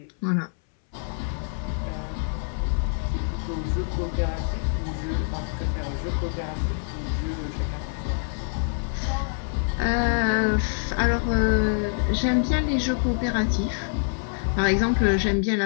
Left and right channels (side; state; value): right; silent; 61 dB below the other